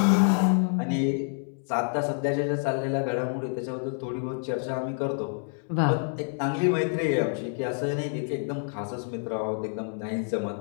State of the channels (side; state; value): right; silent; 60 dB below the other